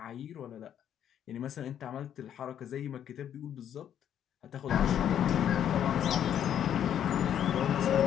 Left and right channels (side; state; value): right; quieter; 9.8 dB